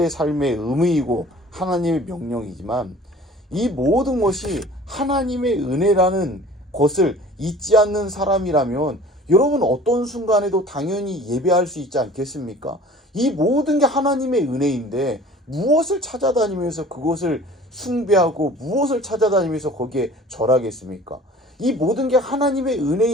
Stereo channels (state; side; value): normal; both; correlation 0.47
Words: 삶의 의무이고 하나님의 명령이지만 이 모든 것이 하나님의 은혜라는 것을 잊지 않는 사람이라면 여러분 어떤 순간에도 당연히 예배할 수 있지 않겠습니까? 이 모든 게 하나님의 은혜인데 무엇을 찾아다니면서 그것을 숭배하고 무엇을 찾아다니면서 거기에 절하겠습니까? 이 모든 게 하나님의